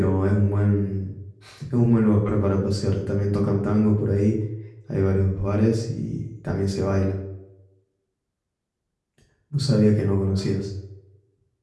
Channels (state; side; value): identical; both; correlation 1.00